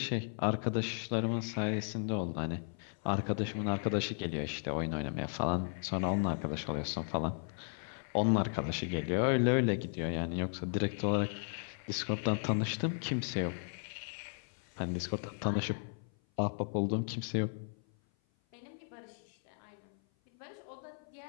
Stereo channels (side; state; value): right; silent; 54 dB below the other